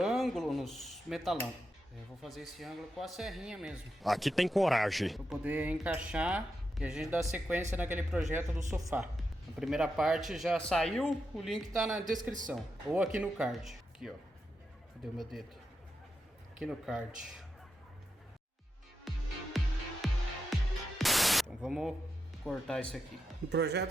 nos metalão. Eu vou fazer esse ângulo com a serrinha mesmo. Aqui tem coragem. Para poder encaixar e a gente dar sequência naquele projeto do sofá. A primeira parte já saiu, o link tá na descrição. Ou aqui no card. Aqui, ó. Cadê o meu dedo? Aqui no card. Então vamos cortar isso aqui. No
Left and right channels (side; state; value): both; normal; correlation 0.86